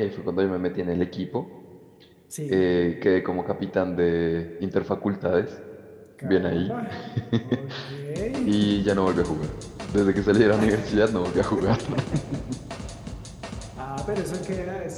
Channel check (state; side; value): identical; both; correlation 1.00